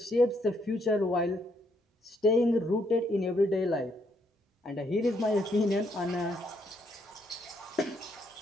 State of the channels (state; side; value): normal; both; correlation 0.73